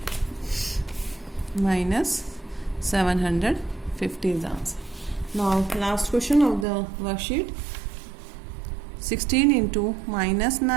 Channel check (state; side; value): drops out; left; at 6.7 s